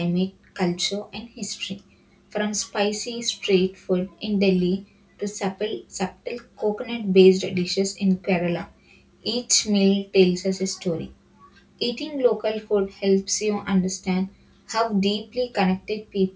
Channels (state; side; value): identical; both; correlation 1.00